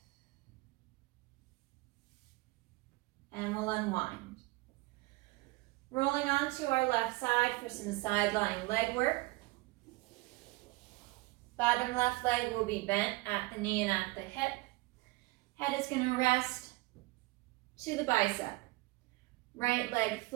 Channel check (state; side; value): quieter; left; 21.9 dB